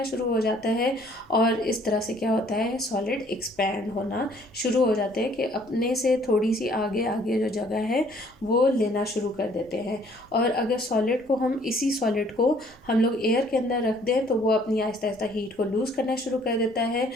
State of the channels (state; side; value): noise; right; hum, 29 dB below the sound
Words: शुरू हो जाता है और इस तरह से क्या होता है, सॉलिड एक्सपैंड होना शुरू हो जाते हैं कि अपने से थोड़ी सी आगे आगे जो जगह है वो लेना शुरू कर देते हैं। और अगर सॉलिड को हम इसी सॉलिड को हम लोग एयर के अंदर रख दें तो वो अपनी आहिस्ता आहिस्ता हीट को लूज़ करना शुरू कर देता है